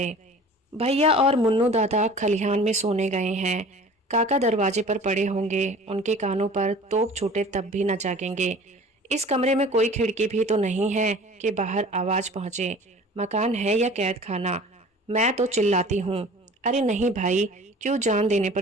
भैया और मुन्नू दादा खलिहान में सोने गए हैं। काका दरवाजे पर पड़े होंगे, उनके कानों पर तोप छूटे तब भी न जागेंगे। इस कमरे में कोई खिड़की भी तो नहीं है कि बाहर आवाज पहुंचे। मकान है या कैद खाना? मैं तो चिल्लाती हूँ, अरे नहीं भाई, क्यों जान देने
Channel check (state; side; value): normal; both; correlation 0.44